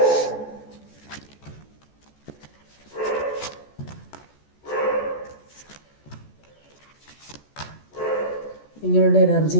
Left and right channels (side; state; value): right; late; 14 ms